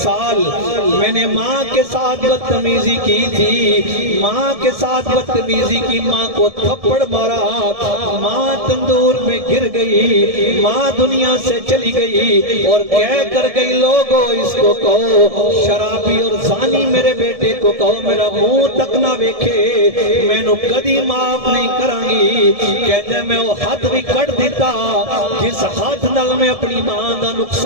میں نے ماں کے ساتھ بدتمیزی کی تھی، ماں کے ساتھ بدتمیزی کی، ماں کو تھپڑ مارا، ماں تندور میں گر گئی، ماں دنیا سے چلی گئی اور کہہ کر گئی لوگوں اس کو کہو شرابی اور زانی میرے بیٹے کو کہو میرا منہ تک نہ ویکھے، میں نو کدی معاف نہیں کرانگی۔ کہتے میں وہ حد بھی کٹ دیتا جس حد نال میں اپنی ماں دا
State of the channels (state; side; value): late; left; 1.7 ms